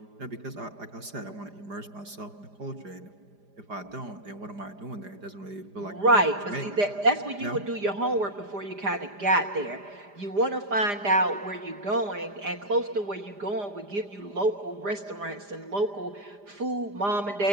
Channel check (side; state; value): left; late; 5.0 ms